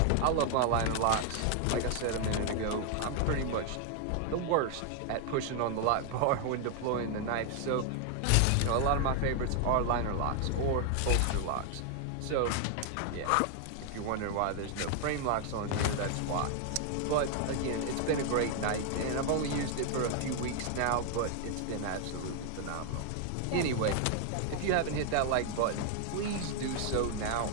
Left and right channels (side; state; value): both; different; correlation 0.00